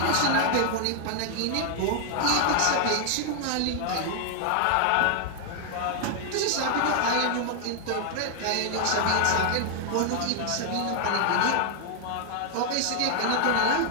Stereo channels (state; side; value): different; both; correlation 0.00